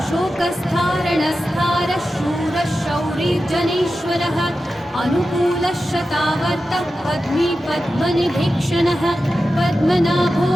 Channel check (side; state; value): both; normal; correlation 0.92